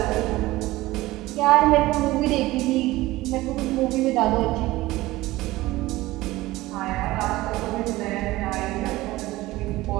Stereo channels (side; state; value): left; quieter; 18.3 dB